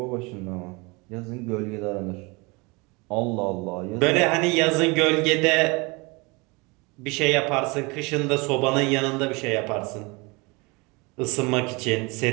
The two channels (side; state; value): left; quieter; 27.0 dB